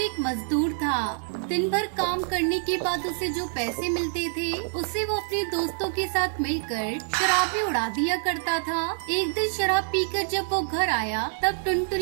मजदूर था। दिन भर काम करने के बाद उसे जो पैसे मिलते थे उसे वो अपने दोस्तों के साथ मिलकर शराब में उड़ा दिया करता था। एक दिन शराब पीकर जब वो घर आया तब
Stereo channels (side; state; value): left; silent; digital silence